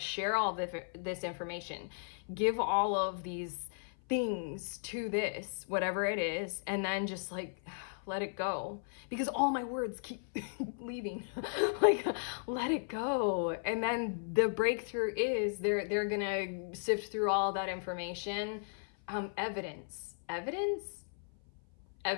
all this information, give all of these things to this, whatever it is, and then just like let it go, because all my words keep leaving. Like, let it go. And then the breakthrough is they're gonna sift through all that information. Evidence is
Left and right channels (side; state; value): right; silent; 54 dB below the other